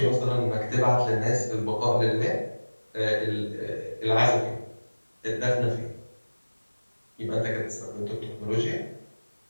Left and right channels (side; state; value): both; inverted; correlation -1.00